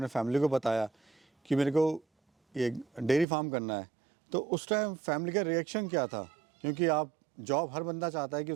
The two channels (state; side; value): drops out; left; at 3.2 s